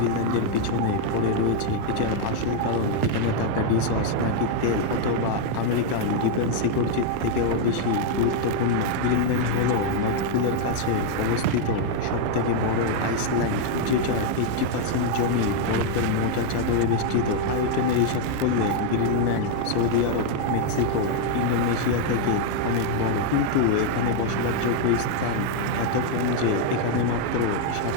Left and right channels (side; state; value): both; different; correlation 0.00